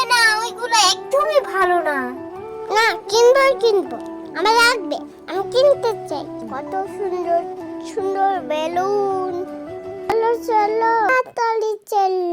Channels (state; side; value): identical; both; correlation 1.00